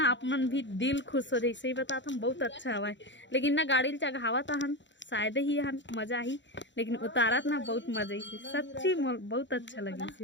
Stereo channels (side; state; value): right; late; 0.53 ms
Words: आप मन भी दिल खुश हो जाए। सही बताता हम बहुत अच्छा हवा लेकिन ना गाड़ी चढ़ावा था हन शायद ही हन मजा ही लेकिन उतारत ना बहुत मजा ही सच्ची बहुत अच्छा लगी